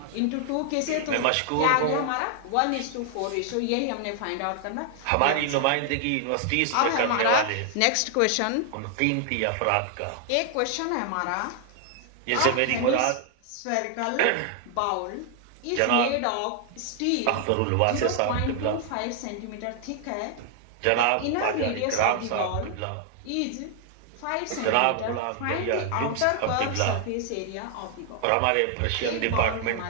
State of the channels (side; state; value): both; different; correlation 0.00